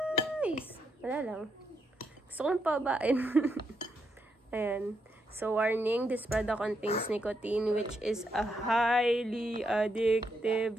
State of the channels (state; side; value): normal; both; correlation 0.80